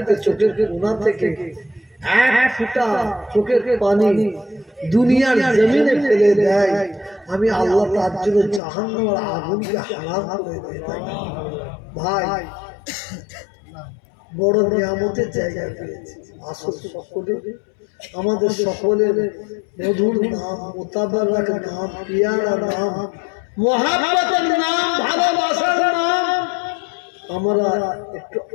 চোখের কোণা থেকে এক ফোঁটা চোখের পানি দুনিয়ার জমিনে ফেলে দেয়, আমি আল্লাহ তার জন্য জাহান্নামের আগুনকে হারাম করে দেয়। ভাই বড় নিয়ামতের জায়গা পেয়েছে। আসল সকলে আমাদের সকলের মধুর নাম, মোতাবারক নাম, পিয়ারা নাম, মহাব্বতের নাম, ভালোবাসার নাম, আমরা একটু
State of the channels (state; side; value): drops out; right; at 8.6 s